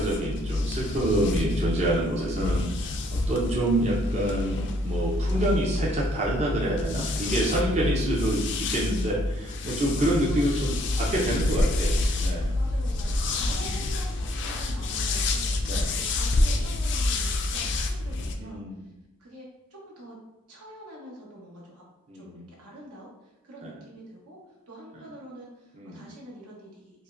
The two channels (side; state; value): both; normal; correlation 0.67